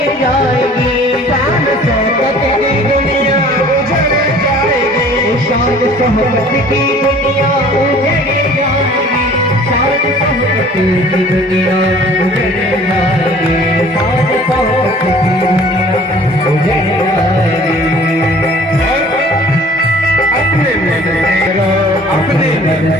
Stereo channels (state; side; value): normal; both; correlation 0.50